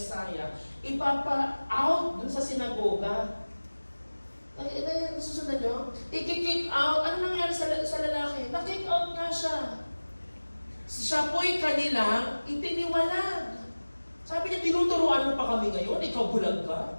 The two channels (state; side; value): inverted; both; correlation -1.00